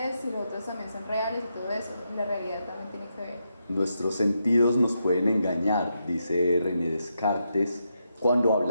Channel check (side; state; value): both; inverted; correlation -0.83